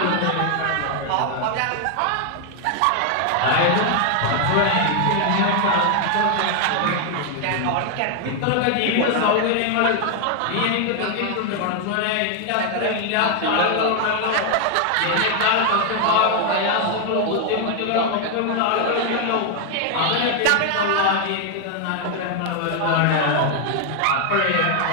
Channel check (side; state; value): both; different; correlation 0.00